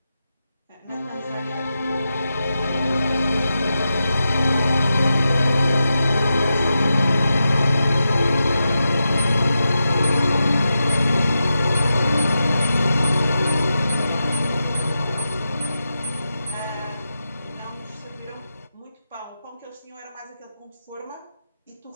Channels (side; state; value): both; inverted; correlation -0.90